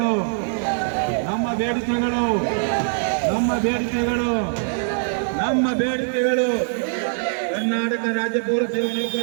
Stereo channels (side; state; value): left; silent; digital silence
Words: ನಮ್ಮ ಬೇಡಿಕೆಗಳು, ನಮ್ಮ ಬೇಡಿಕೆಗಳು, ನಮ್ಮ ಬೇಡಿಕೆಗಳು ಕರ್ನಾಟಕ ರಾಜ್ಯ ಪೌರ ಸೇವಾ